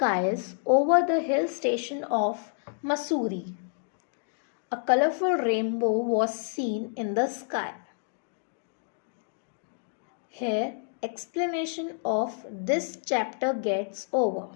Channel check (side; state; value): right; silent; digital silence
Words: over the hill station of Mussoorie. A colorful rainbow was seen in the sky. Here, explanation of this chapter gets over.